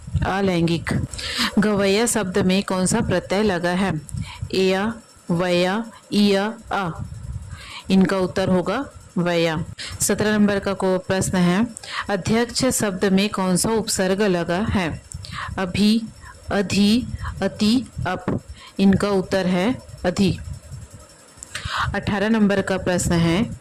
अलैंगिक। गवैया शब्द में कौन सा प्रत्यय लगा है? एया, वया, इया, अ। इनका उत्तर होगा वया। 17 नंबर का को प्रश्न है, अध्यक्ष शब्द में कौन सा उपसर्ग लगा है? अभी, अधि, अति, अप। इनका उत्तर है अधि। 18 नंबर का प्रश्न है,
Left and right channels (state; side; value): identical; both; correlation 1.00